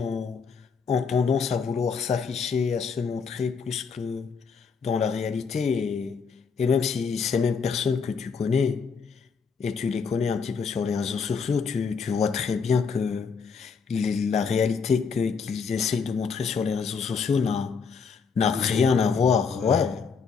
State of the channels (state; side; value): quieter; right; 5.7 dB